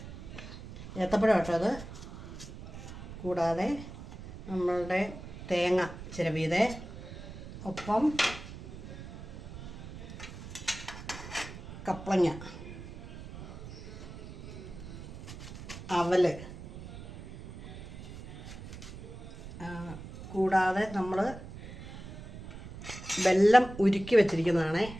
ഏത്തപ്പഴം കേട്ടോ അത്. കൂടാതെ നമ്മളുടെ തേങ്ങ ചിരവിയത്, ഒപ്പം കപ്പളങ്ങ, അവല്, കൂടാതെ നമ്മൾ വെല്ലം ഉരുക്കി വെച്ചിരിക്കുന്നതാണേ.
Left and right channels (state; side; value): noise; right; rumble, 12 dB below the sound